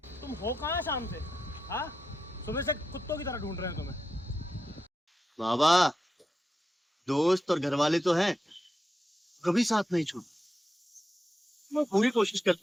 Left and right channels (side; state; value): both; normal; correlation 0.88